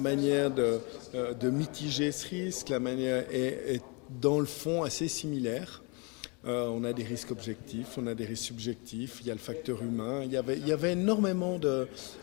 de mitiger ce risque, la manière est dans le fond assez similaire. On a des risques objectifs, on a des risques subjectifs, il y a le facteur humain. Il y avait énormément de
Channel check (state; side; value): quieter; right; 31.6 dB